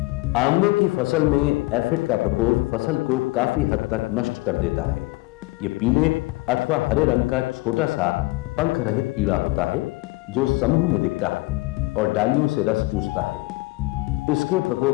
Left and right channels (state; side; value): quieter; right; 22.5 dB